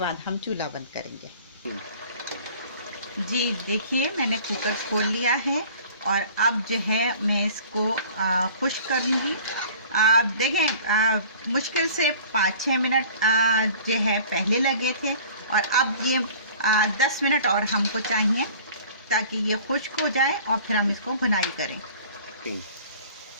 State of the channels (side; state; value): both; inverted; correlation -0.46